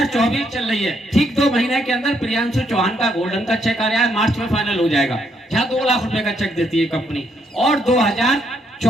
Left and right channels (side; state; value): both; normal; correlation 0.74